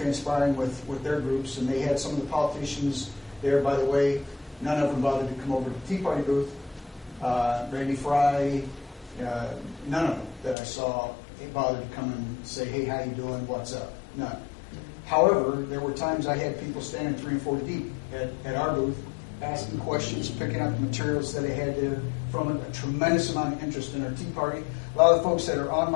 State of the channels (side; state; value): right; drops out; at 10.6 s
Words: with their groups. And they had some of the politicians there, by the way. None of them bothered to come over to the Tea Party booth. Randy Fry, none of them that I saw bothered to come and say, hey, how you doing, what's up? None. However, there were times I had people standing 3 and 4 deep at our booth, asking questions, picking up the materials that I had there from a tremendous amount of interest in our Tea Party. A lot of the folks that are on